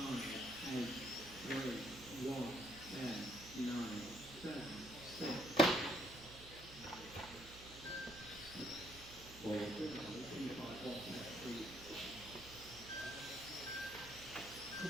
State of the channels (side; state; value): right; noise; hum, 16 dB below the sound